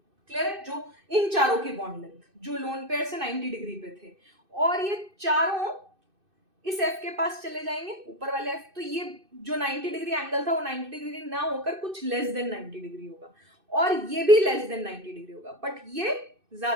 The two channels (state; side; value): late; left; 2.6 ms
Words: क्लियर है? जो इन चारों की बॉन्ड लेंथ जो लोन पेयर से 90 डिग्री पे थे, और ये चारों इस F के पास चले जाएंगे, ऊपर वाले F, तो ये जो 90 डिग्री एंगल था वो 90 डिग्री ना होकर कुछ लेस देन 90 डिग्री होगा, और ये भी लेस देन 90 डिग्री होगा, बट ये